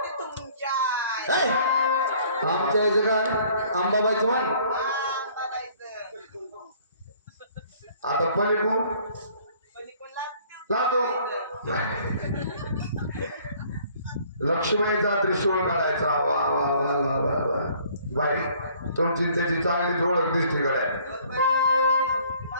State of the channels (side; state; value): both; inverted; correlation -0.57